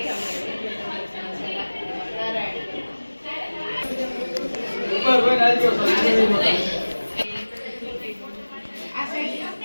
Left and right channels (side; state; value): both; inverted; correlation -1.00